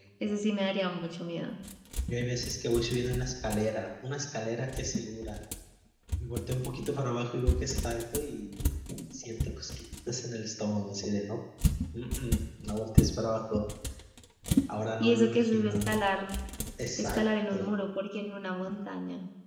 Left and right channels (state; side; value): identical; both; correlation 1.00